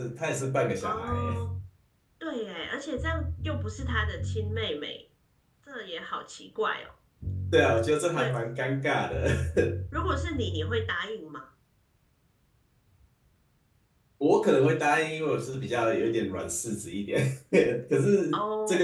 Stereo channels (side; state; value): both; identical; correlation 1.00